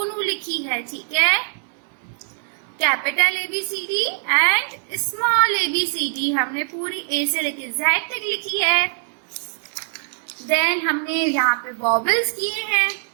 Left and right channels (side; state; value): left; silent; digital silence